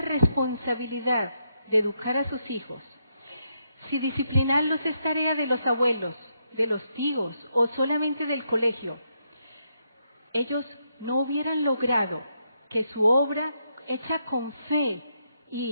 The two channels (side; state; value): both; inverted; correlation -0.79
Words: de educar a sus hijos, si disciplinarlos es tarea de los abuelos, de los tíos o solamente del colegio, ellos no hubieran logrado que su obra hecha con fe